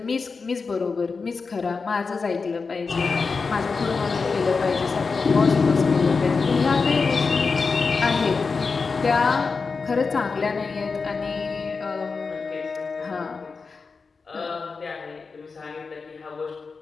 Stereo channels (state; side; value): quieter; right; 4.7 dB